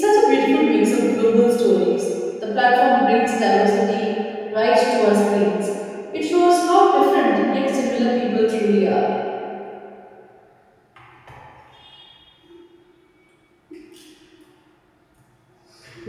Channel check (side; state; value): both; identical; correlation 1.00